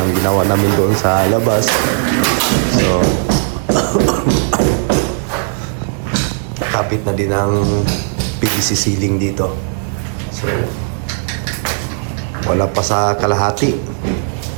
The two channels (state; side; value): silent; left; 61 dB below the other